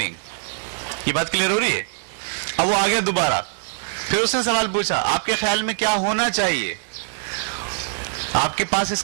یہ بات کلیئر ہو رہی ہے؟ اب وہ آ گیا دوبارہ، پھر اس نے سوال پوچھا آپ کے خیال میں کیا ہونا چاہیے، آپ کے پاس اس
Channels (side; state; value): left; silent; 64 dB below the other